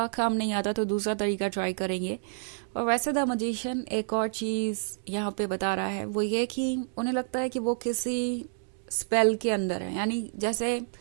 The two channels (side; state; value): left; silent; digital silence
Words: काम नहीं आता तो दूसरा तरीका ट्राई करेंगे। और वैसे द मैजिशियन एक और चीज यहाँ पे बता रहा है, वो ये कि उन्हें लगता है कि वो किसी स्पेल के अंदर है, यानी जैसे